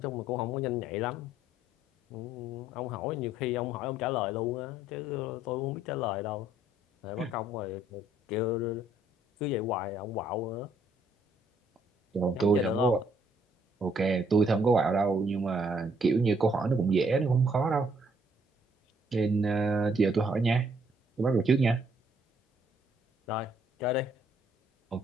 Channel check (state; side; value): normal; both; correlation 0.67